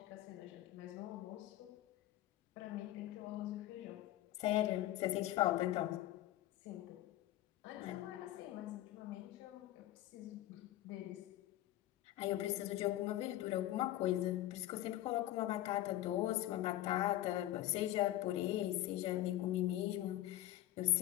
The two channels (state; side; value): quieter; right; 14.5 dB